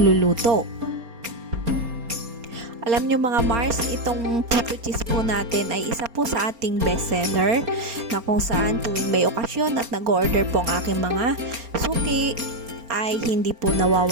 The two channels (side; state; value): left; late; 4.3 ms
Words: Alam nyo mga Mars, itong puto cheese po natin ay isa po sa ating bestseller na kung saan tuwing may okasyon at nag-order po ang aking mga suki ay hindi po